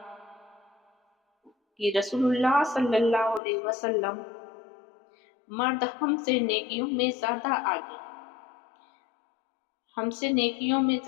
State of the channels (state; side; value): drops out; right; at 3.4 s